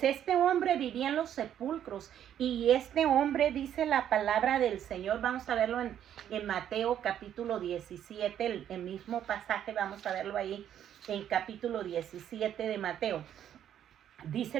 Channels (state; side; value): quieter; left; 10.2 dB